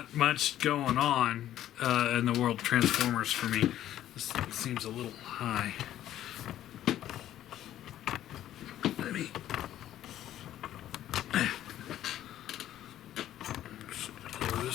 much going on in the world of Transformers for me. This seems a little high. Let me... lower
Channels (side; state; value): right; quieter; 12.4 dB